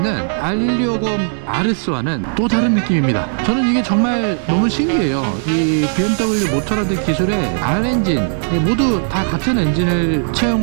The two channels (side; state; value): left; silent; digital silence